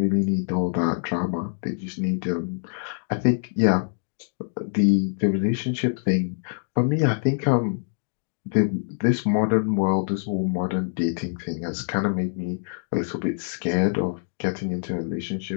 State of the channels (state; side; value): silent; right; digital silence